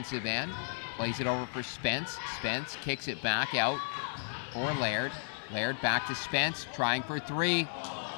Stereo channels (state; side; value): silent; right; digital silence